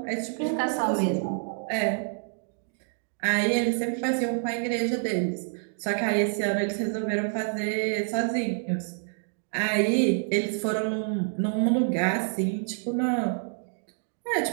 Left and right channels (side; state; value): left; silent; digital silence